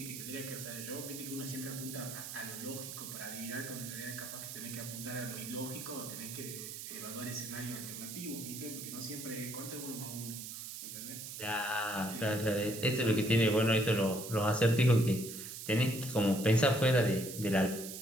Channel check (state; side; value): noise; right; hiss, 9 dB below the sound